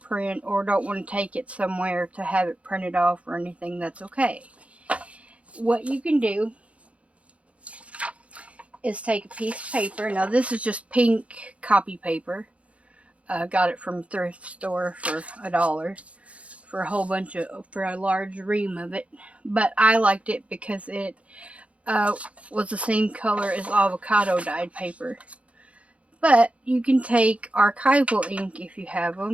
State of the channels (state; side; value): late; left; 0.063 ms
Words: or don't want to take it somewhere to have it printed off or anything, that's okay. What you can do is take a piece of paper. Now this is just pink copy paper. Got it from a thrift store for $1 for a large ream of it. But I liked it because it was the same color as avocado dyed paper. But you can take archival ink if you have